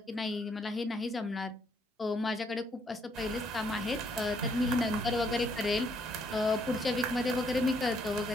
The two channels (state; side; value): normal; both; correlation 0.70